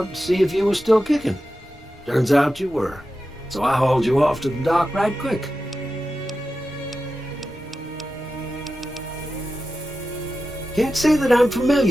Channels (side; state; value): both; normal; correlation 0.92